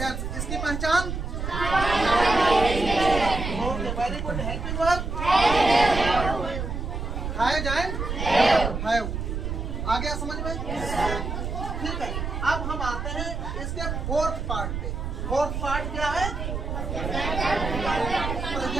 इसकी पहचान? Okay, very good. Helping verb? Has and have. आ गया समझ में? ठीक है। अब हम आते हैं इसके फोर्थ पार्ट पे। फोर्थ पार्ट क्या है?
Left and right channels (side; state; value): right; noise; rumble, 4 dB below the sound